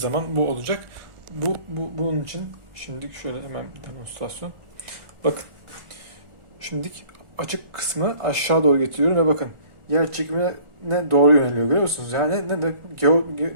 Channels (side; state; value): left; late; 1.4 ms